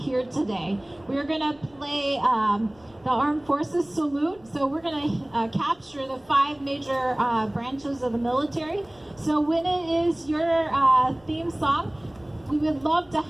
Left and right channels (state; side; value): noise; left; rumble, 29 dB below the sound